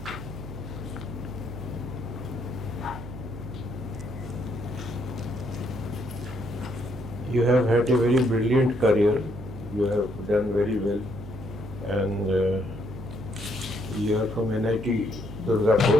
You have had a very brilliant career. You have done very well, and you are from NIT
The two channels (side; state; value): right; noise; hum, 11 dB below the sound